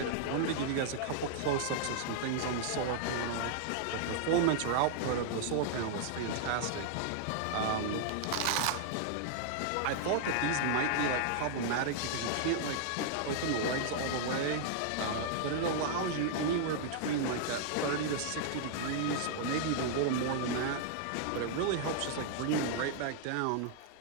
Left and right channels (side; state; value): both; different; correlation -0.01